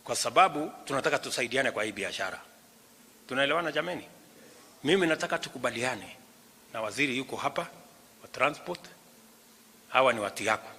kwa sababu tunataka tusaidiane kwa hii biashara. Tunaelewana jameni? Mimi nataka tukubaliane na waziri yuko hapa wa transport. Hawa ni watu yako,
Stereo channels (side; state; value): both; identical; correlation 1.00